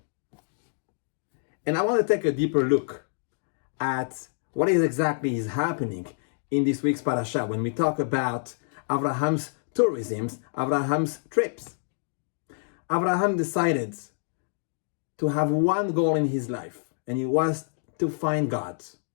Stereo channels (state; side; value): silent; right; digital silence